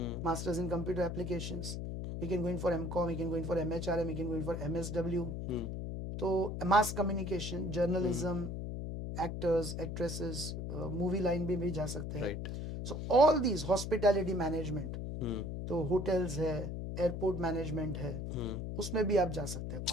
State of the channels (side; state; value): left; noise; hum, 5 dB below the sound